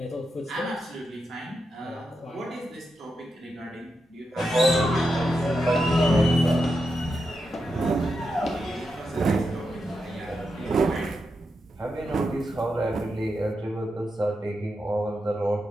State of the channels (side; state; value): both; normal; correlation 0.86